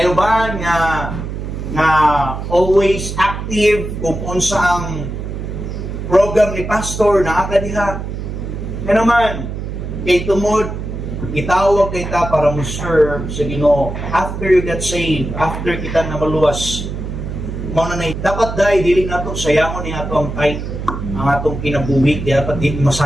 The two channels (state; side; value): noise; right; hum, 6 dB below the sound